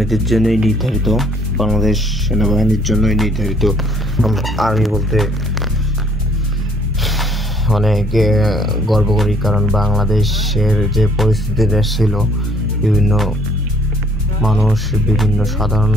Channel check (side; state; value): both; normal; correlation 0.62